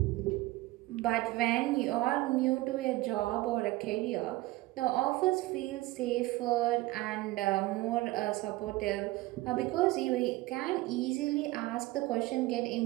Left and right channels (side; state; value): left; quieter; 19.1 dB